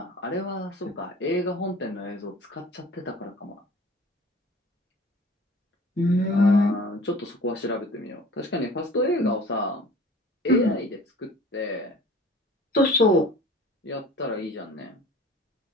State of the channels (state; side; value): normal; both; correlation 0.45